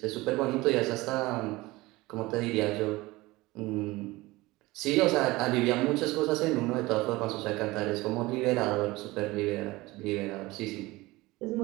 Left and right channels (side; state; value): left; quieter; 20.4 dB